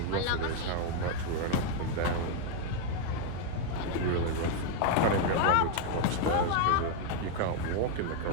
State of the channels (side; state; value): both; different; correlation 0.00